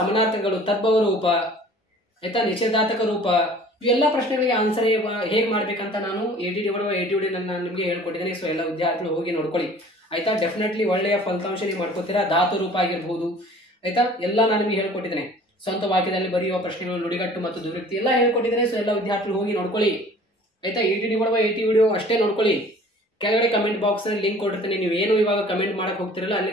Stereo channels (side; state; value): both; normal; correlation 0.49